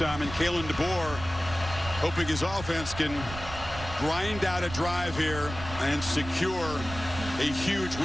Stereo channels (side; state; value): right; noise; rumble, 11 dB below the sound